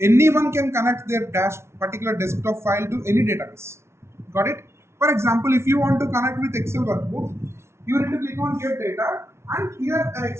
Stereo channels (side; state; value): left; late; 0.13 ms